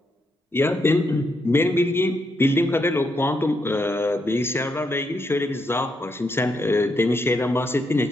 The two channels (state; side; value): normal; both; correlation 0.79